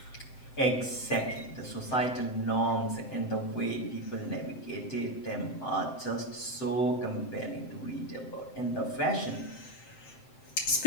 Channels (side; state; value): right; late; 7.8 ms